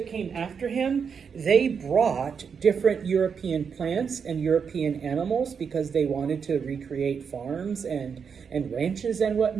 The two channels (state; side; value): quieter; left; 6.4 dB